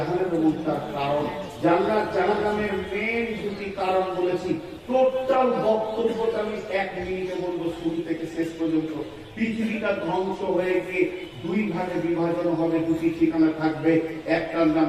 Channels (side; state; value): both; identical; correlation 1.00